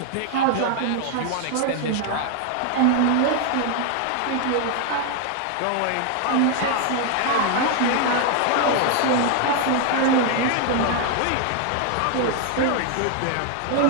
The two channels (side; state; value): both; different; correlation 0.00